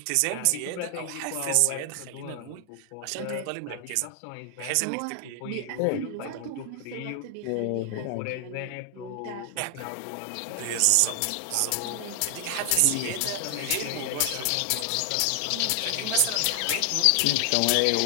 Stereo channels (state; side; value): different; both; correlation 0.00